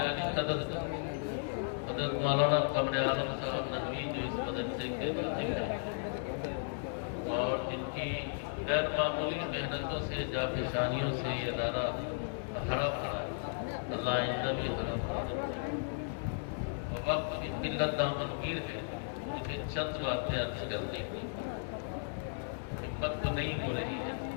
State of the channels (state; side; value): silent; right; digital silence